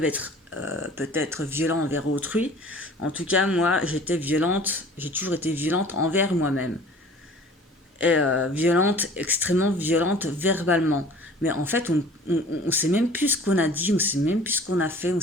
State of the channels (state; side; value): normal; both; correlation 0.47